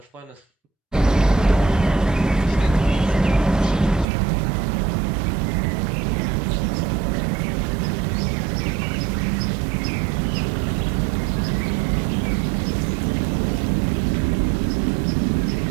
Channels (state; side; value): drops out; left; at 4.0 s